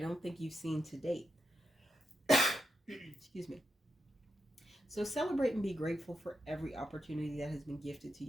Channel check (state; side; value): normal; both; correlation 0.85